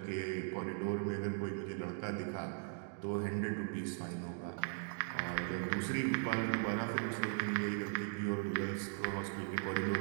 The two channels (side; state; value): left; silent; digital silence